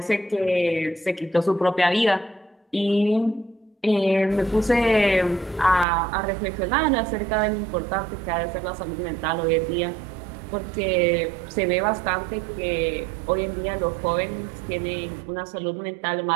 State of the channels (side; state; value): left; drops out; at 5.9 s